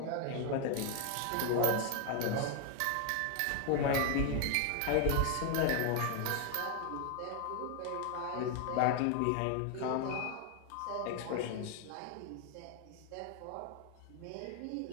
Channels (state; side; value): different; both; correlation 0.01